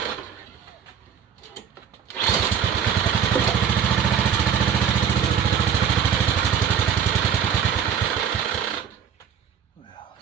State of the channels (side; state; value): left; quieter; 7.9 dB